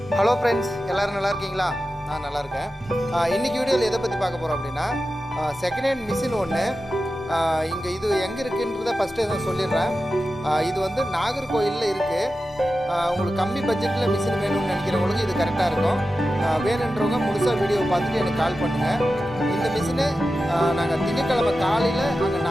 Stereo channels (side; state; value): both; normal; correlation 0.92